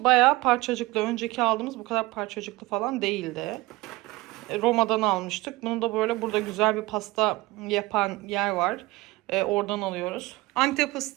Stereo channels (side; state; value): left; quieter; 20.8 dB